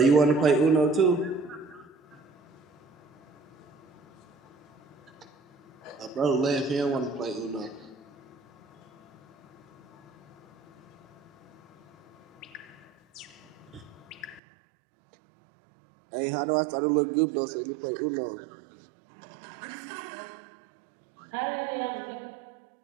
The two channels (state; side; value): drops out; left; at 14.4 s